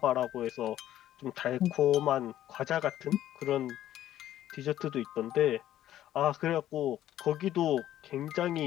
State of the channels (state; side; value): quieter; right; 12.6 dB